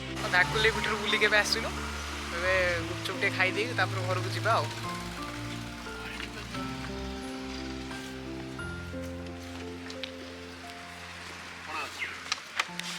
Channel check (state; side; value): identical; both; correlation 1.00